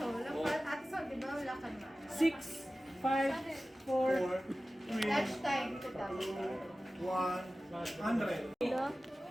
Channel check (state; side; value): normal; both; correlation 0.96